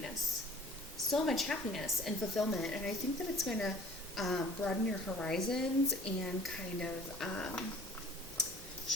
and fulfillment. And I think that it's going to broaden your horizons and kind of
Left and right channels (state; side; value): normal; both; correlation 0.49